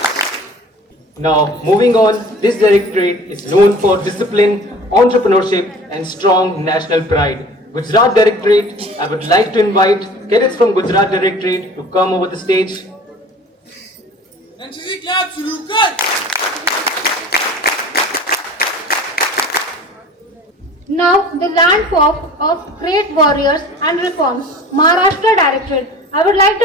Now, moving on, this directorate is known for discipline, entrepreneurship and strong national pride. Gujarat Directorate, I would like to invite cadets from Gujarat Directorate to come over the stage. NCC clap शुरू कर. Now, the landform of great warriors and reforms, Maharashtra Directorate. I would like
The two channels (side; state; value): both; normal; correlation 0.43